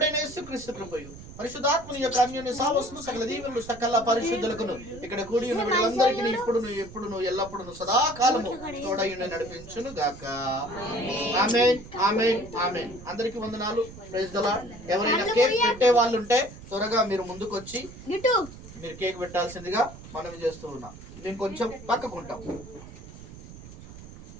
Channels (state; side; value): noise; right; rumble, 16 dB below the sound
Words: యేసుక్రీస్తు కృపయు, పరిశుద్ధాత్మని యొక్క అన్యోన్య సహవాసము, సకల దీవెనలు సకల పరిశుద్ధులకును ఇక్కడ కూడి ఉన్న వీళ్ళందరికీ ఇప్పుడును ఎప్పుడును ఎల్లప్పుడును సదాకాలము తోడయుండి నడిపించును గాక. ఆమేన్, ఆమేన్, ఆమేన్. అందరికీ వందనాలు. Praise the lord. ఎవరైనా కేక్ పెట్టే వాళ్ళు ఉంటే త్వరగా మీరు ముందుకు వచ్చి మీరు కేక్ పెట్టాల్సిందిగా మనవి చేస్తూ ఉన్నాం. మేము కొంచెం పక్కకుంటాం.